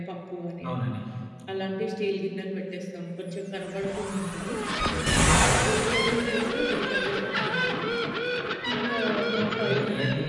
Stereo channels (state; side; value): identical; both; correlation 1.00